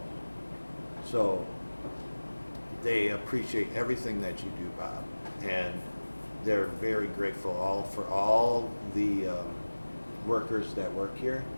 So they appreciate everything that you do, Bob, and they're very grateful for all the workers that work here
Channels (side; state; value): both; inverted; correlation -1.00